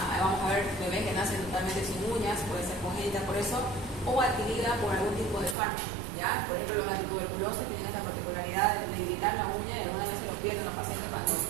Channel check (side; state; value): left; drops out; at 5.6 s